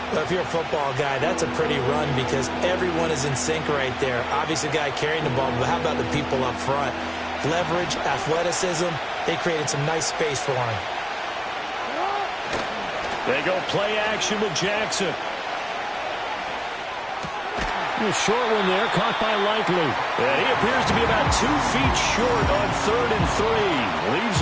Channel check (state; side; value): identical; both; correlation 1.00